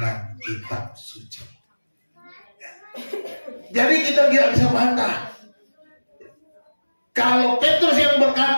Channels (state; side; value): inverted; both; correlation -1.00